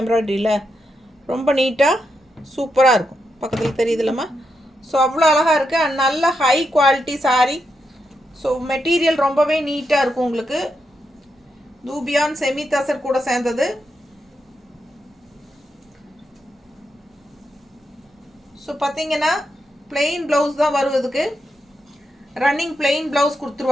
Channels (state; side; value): normal; both; correlation 0.84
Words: எம்ப்ராய்டரியில்? ரொம்ப நீட்டாக சூப்பராக இருக்கும். பக்கத்தில் தெரியுதுல்லம்மா? ஸோ அவ்வளோ அழகாக இருக்குது. அண்ட் நல்ல high quality sari. So material ரொம்பவே நீட்டாக இருக்கும் உங்களுக்கு. தூபியான் செமி தசர் கூட சேர்ந்தது. ஸோ பார்த்தீங்கன்னா பிளெயின் ப்ளவுஸ் தான் வருவதுக்கு, ரன்னிங் பிளெயின் ப்ளவுஸ்